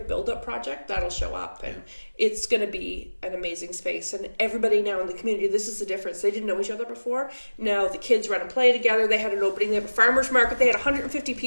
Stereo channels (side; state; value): both; inverted; correlation -1.00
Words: Build-Up Project, that'll show up. And it's going to be an amazing space. And everybody now in the community, this is the difference. They didn't know each other before. Now the kids run and play together. They had an opening. They have a farmer's market. They had 150